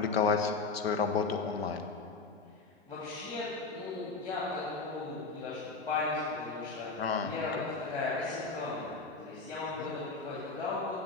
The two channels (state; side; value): quieter; right; 4.2 dB